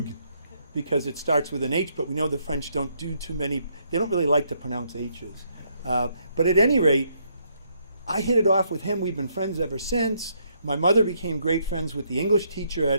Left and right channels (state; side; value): inverted; both; correlation -0.73